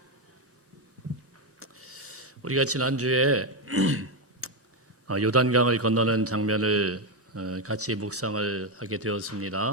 우리가 지난주에 요단강을 건너는 장면을 같이 묵상을 하게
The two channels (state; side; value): normal; both; correlation 0.07